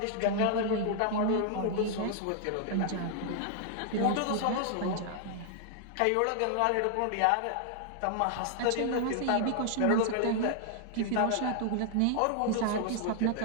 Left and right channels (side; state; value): both; different; correlation 0.00